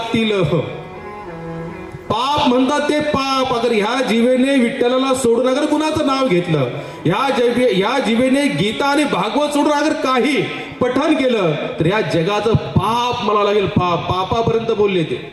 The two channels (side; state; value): both; identical; correlation 1.00